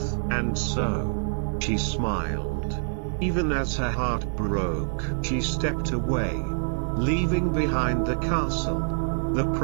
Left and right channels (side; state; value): left; silent; digital silence